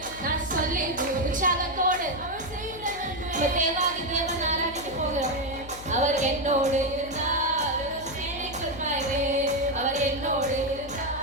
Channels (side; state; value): left; noise; hum, 16 dB below the sound